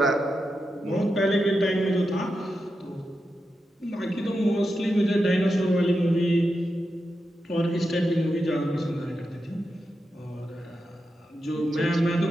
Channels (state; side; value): normal; both; correlation 0.88